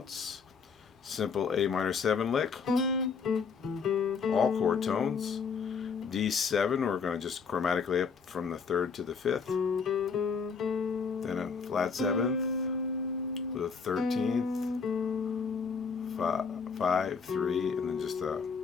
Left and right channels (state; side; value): quieter; right; 5.5 dB